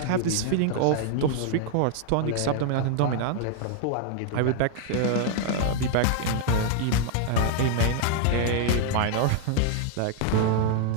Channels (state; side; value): different; both; correlation 0.00